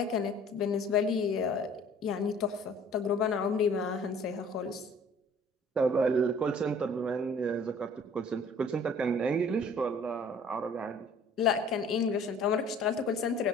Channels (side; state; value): both; normal; correlation 0.52